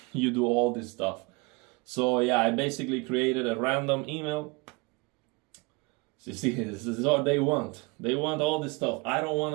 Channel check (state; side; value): quieter; left; 28.1 dB